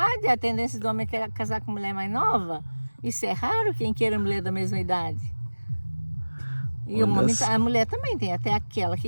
A tendência do homem é casar com mulher mais nova. Isso é raro, quem queira mulher da mesma idade. E a mulher também tem, até aquela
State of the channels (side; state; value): both; inverted; correlation -1.00